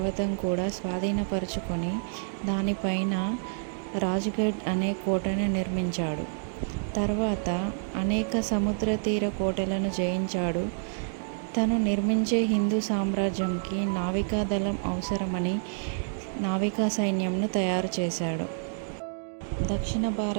కూడా స్వాధీనపరుచుకొని దానిపైన రాజ్గఢ్ అనే కోటను నిర్మించాడు. తర్వాత అనేక సముద్ర తీర కోటలను జయించాడు. తను నిర్మించే హిందూ సామ్రాజ్యంకి నావికా దళం అవసరమని నావికా సైన్యంను తయారు చేశాడు. దక్షిణ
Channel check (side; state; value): left; silent; digital silence